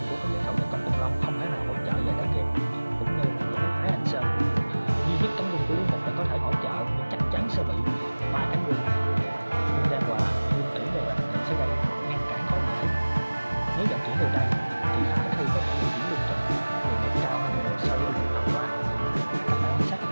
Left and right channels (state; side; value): inverted; both; correlation -1.00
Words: của các hậu Công Tôn Long không thể nào hỗ trợ về để kịp, cũng như là với Thái Hành Sơn. Duy nhất cánh quân của Lý Mục là có thể hỗ trợ, nhưng chắc chắn sẽ bị ba cánh quân Lương Đan Hòa, Lương Tỷ về bạn sẽ gây ngăn cản khó dễ. Nếu vận chuyển từ đây thì khả thi có thể di chuyển lương thực đường nghiệp cao hơn nhiều so với đường tàu qua. Các bạn quan sát có